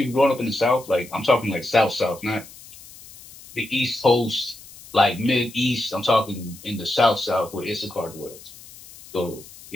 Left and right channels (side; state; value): left; noise; hiss, 19 dB below the sound